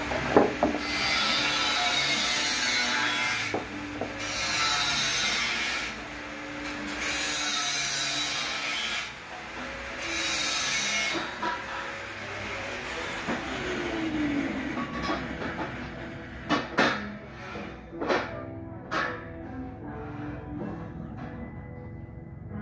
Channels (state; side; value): identical; both; correlation 1.00